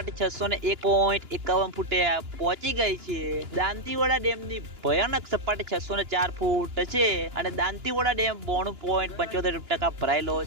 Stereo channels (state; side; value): late; left; 2.9 ms